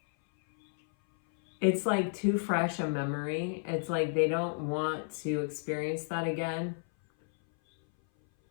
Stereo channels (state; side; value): silent; right; 57 dB below the other